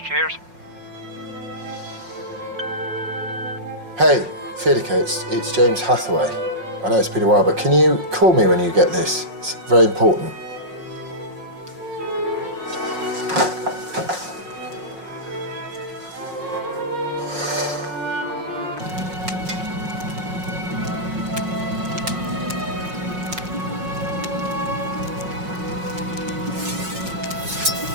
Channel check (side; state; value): left; late; 5.5 ms